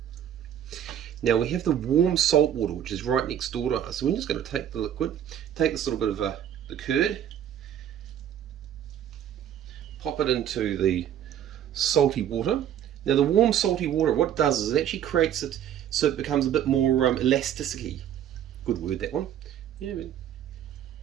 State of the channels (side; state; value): left; quieter; 10.1 dB